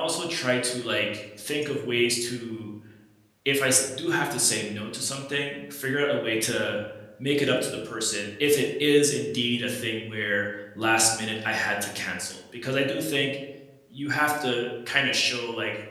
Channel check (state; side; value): identical; both; correlation 1.00